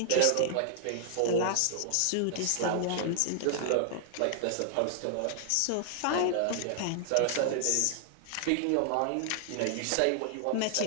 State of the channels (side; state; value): both; different; correlation -0.01